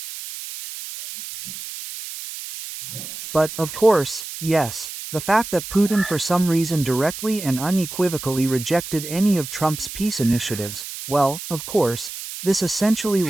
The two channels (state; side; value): noise; right; hiss, 10 dB below the sound